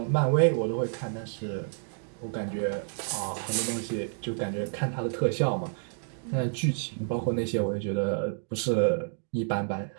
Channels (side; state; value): left; silent; digital silence